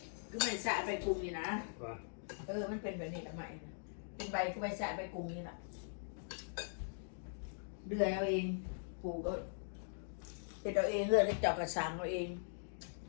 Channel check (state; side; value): silent; right; digital silence